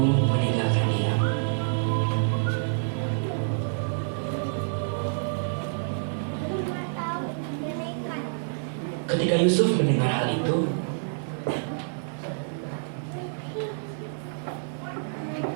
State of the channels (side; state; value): left; silent; digital silence